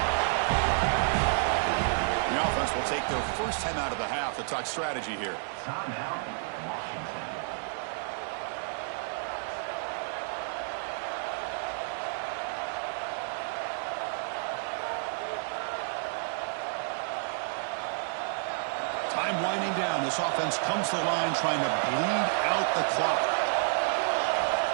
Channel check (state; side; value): silent; left; 58 dB below the other